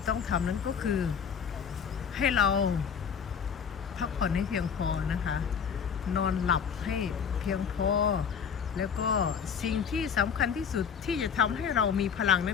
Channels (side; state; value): right; quieter; 6.9 dB